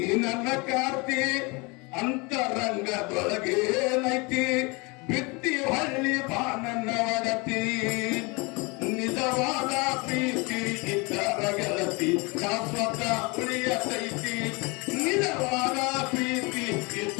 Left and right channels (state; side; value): quieter; right; 27.9 dB